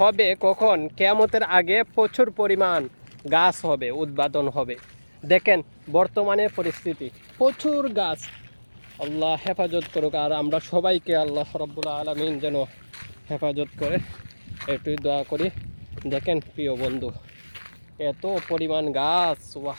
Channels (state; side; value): inverted; both; correlation -1.00